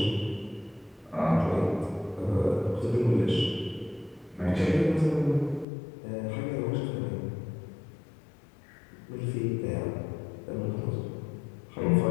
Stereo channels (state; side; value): drops out; right; at 5.7 s